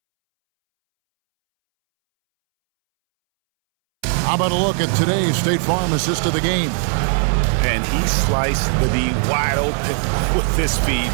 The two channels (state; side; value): silent; left; 65 dB below the other